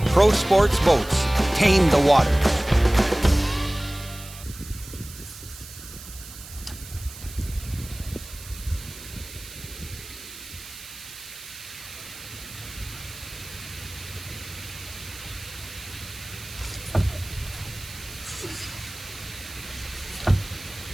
Pro Sports Boats, tame the water.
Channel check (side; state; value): right; noise; hiss, 15 dB below the sound